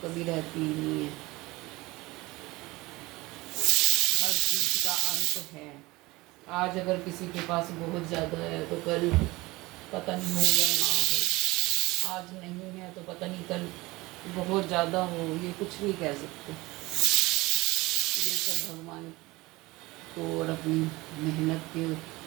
कभी रहती ही नहीं है, हर चीज़ का अंत है। आज अगर किसी के पास बहुत ज़्यादा है तो कल पता नहीं हो या ना हो, आज नहीं है तो पता नहीं कल बहुत ज़्यादा हो, ये कुछ नहीं कह सकते। ये सब भगवान को और अपनी मेहनत के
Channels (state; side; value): quieter; left; 21.1 dB